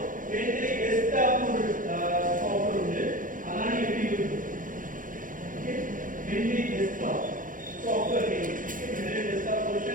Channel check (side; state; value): left; late; 0.39 ms